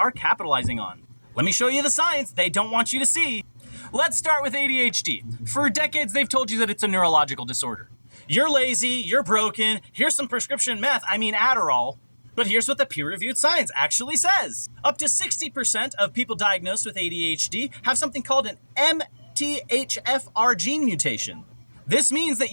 capitalizing on? Let me show you the science they don't want you to see. Let's start with ADHD. For decades, they've told you that it's a neurological disorder. You're lazy, you're broken, here's some prescription Adderall. But here's what the peer-reviewed science actually says. Up to 60% of people diagnosed with ADHD have something called an MTHFR gene mutation. This means that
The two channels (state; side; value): inverted; both; correlation -1.00